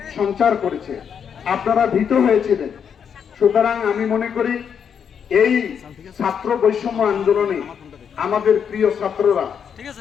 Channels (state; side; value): quieter; right; 7.5 dB